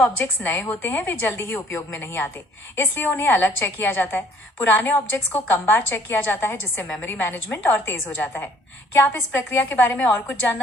नए होते हैं वे जल्दी ही उपयोग में नहीं आते, इसलिए उन्हें अलग चेक किया जाता है। पुराने ऑब्जेक्ट्स को कम बार चेक किया जाता है, जिससे मेमोरी मैनेजमेंट और तेज हो जाता है। क्या आप इस प्रक्रिया के बारे में और कुछ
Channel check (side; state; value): both; normal; correlation 0.59